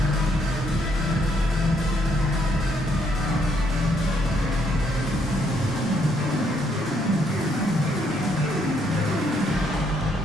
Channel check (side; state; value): both; normal; correlation 0.72